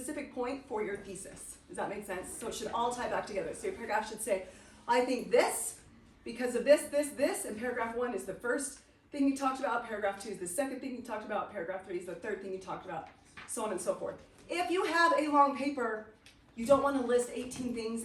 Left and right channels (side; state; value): both; identical; correlation 1.00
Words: point for your thesis. Does that make sense? So it should all tie back together. So your paragraph should say, I think this, because of this, and paragraph 1 is the first thing you talked about, paragraph 2 is the second thing you talked about, paragraph 3 is the third thing you talked about, so on and so forth. If you have a long paper, you don't want to list 18 things